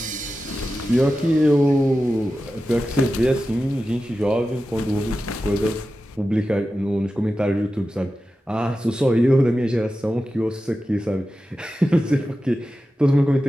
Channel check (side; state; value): both; normal; correlation 0.93